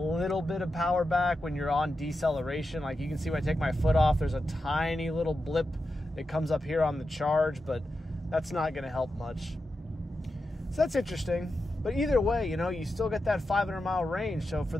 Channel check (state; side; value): normal; both; correlation 0.89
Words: bit of power back when you're on deceleration. Like, you can see when I take my foot off, there's a tiny little blip that comes up here on the charge, but that's not gonna help much. So that's interesting. But either way, you know, you still get that 500-mile range. So for